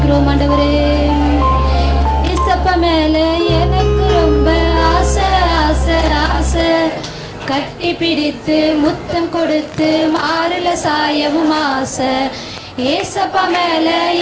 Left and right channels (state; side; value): identical; both; correlation 1.00